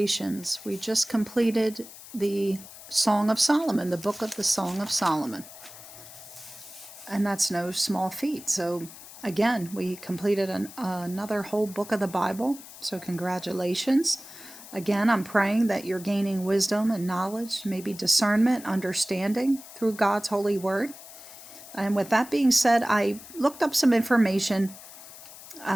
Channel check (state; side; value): noise; left; hiss, 16 dB below the sound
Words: We just completed the Song of Solomon, the book of the Song of Solomon. And that's no small feat. So again, we completed another whole book of the Bible. So congratulations. Again, I'm praying that you're gaining wisdom and knowledge, maybe discernment, understanding through God's holy word. And with that being said, I looked up some information